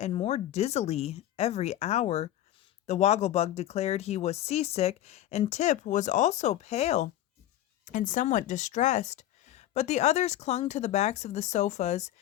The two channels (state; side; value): quieter; right; 13.1 dB